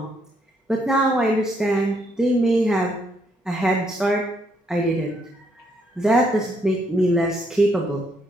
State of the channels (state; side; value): normal; both; correlation 0.73